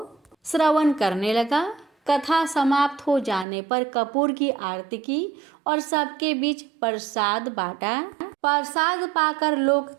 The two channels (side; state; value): left; drops out; at 3.5 s